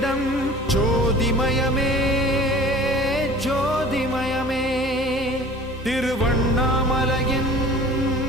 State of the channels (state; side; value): normal; both; correlation 0.45